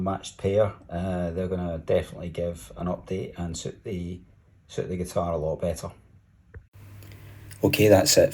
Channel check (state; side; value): identical; both; correlation 1.00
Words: pair, they're going to definitely give an update and suit the guitar a lot better. Okay, that's it